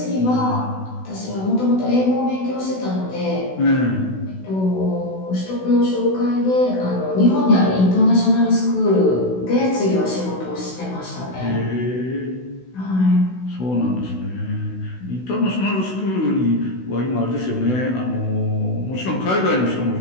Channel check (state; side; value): late; right; 16 ms